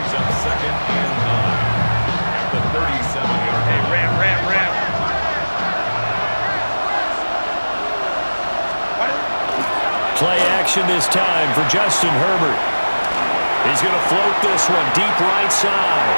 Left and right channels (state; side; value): inverted; both; correlation -1.00